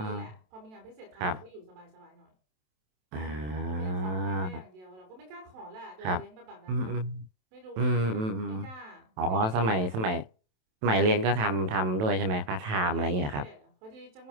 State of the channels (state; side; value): late; left; 27 ms